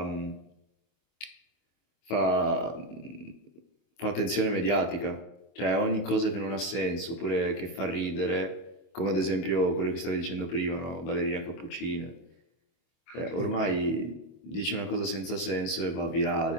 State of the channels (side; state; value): right; late; 25 ms